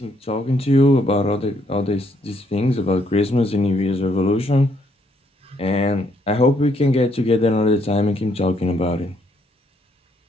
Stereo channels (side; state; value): both; normal; correlation 0.71